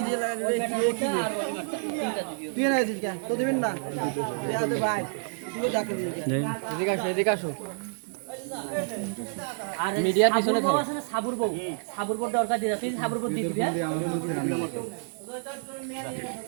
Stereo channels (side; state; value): left; silent; 59 dB below the other